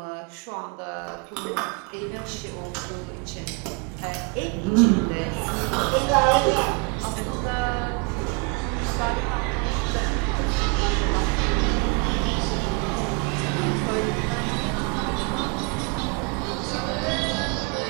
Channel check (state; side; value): quieter; left; 32.7 dB